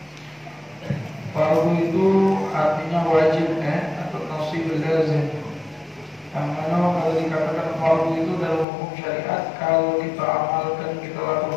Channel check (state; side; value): drops out; right; at 8.7 s